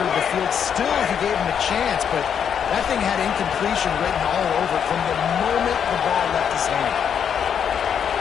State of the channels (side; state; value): right; quieter; 7.9 dB